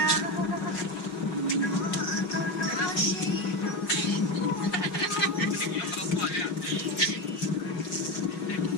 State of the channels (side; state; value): right; late; 5.5 ms